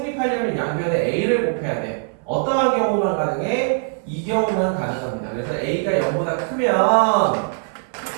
양변에 a를 곱해야 돼. 어떠한 경우만 가능해? 이 경우만 가능합니다. 그래서 a가 0보다 크면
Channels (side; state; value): left; silent; 56 dB below the other